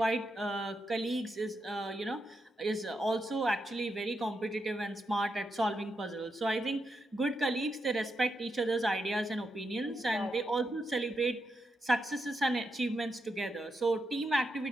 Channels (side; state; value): both; normal; correlation 0.84